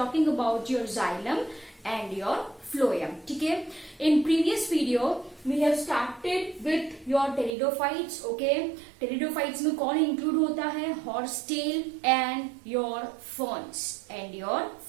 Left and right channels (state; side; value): drops out; left; at 7.5 s